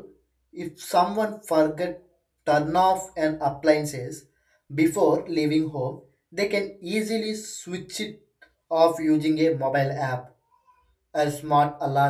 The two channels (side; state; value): both; identical; correlation 1.00